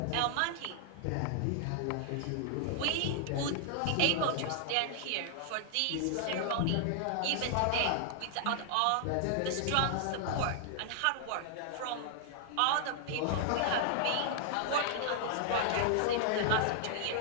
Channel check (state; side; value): different; both; correlation 0.00